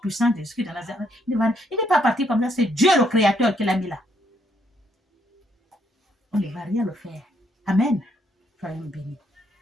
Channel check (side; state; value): both; normal; correlation 0.72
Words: de Jésus de Nazareth, il n'est pas parti comme ça. C'est Dieu le Créateur qui l'a mis là. On ne va rien le faire. Amen. Soyons bénis.